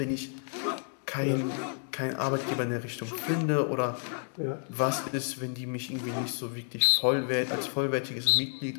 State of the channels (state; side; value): silent; right; 58 dB below the other